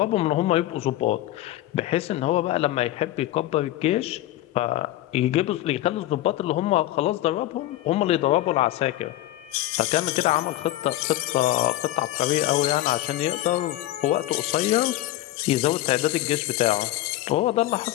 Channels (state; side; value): quieter; right; 15.1 dB